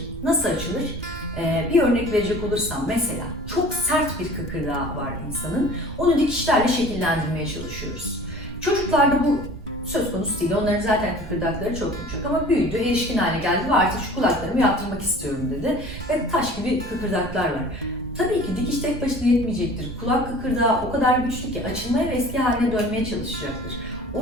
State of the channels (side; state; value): right; noise; rumble, 12 dB below the sound